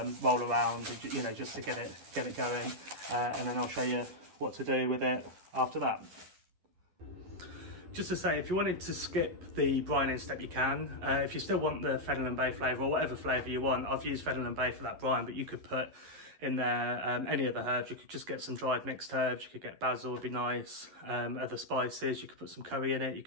roll around, just to get it going, and then I'll show you what to do with it after that. Just to say, if you wanted to skip the brining step, you can. If you still want the Fennel Bay flavour, or whatever flavour you want, I've used Fennel Bay for that brine, but you could put in there any other herbs. You could just get some dried mixed herbs. You could get basil, would be nice. Other spices, you could put some curry in it. You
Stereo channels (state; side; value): late; left; 11 ms